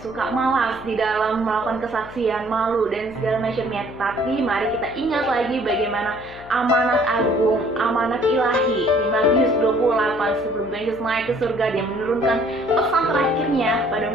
suka malas di dalam melakukan kesaksian, malu dan segala macamnya. Tapi mari kita ingat lagi bagaimana amanat agung, amanat ilahi di Matius 28 sebelum Yesus naik ke surga, Dia menurunkan pesan terakhirnya pada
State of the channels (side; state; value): left; noise; hum, 18 dB below the sound